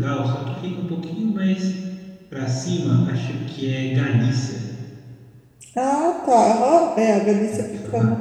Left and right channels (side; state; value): both; identical; correlation 1.00